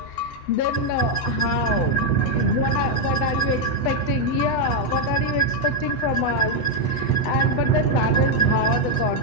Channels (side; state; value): right; late; 8.0 ms